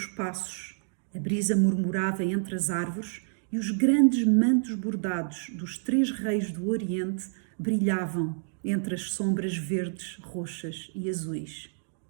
passos. A brisa murmurava entre as árvores e os grandes mantos bordados dos três reis do Oriente brilhavam entre as sombras verdes, roxas e azuis.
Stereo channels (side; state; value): left; silent; digital silence